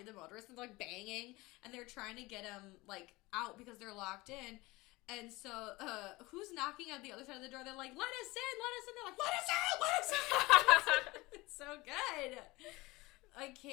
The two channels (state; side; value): quieter; right; 21.6 dB